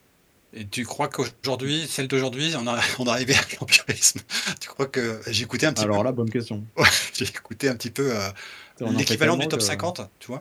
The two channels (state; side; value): identical; both; correlation 1.00